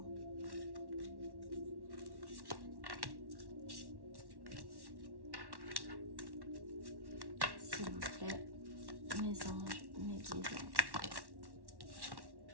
S'il vous plaît, mes anges, mes guides.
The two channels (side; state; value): left; late; 1.1 ms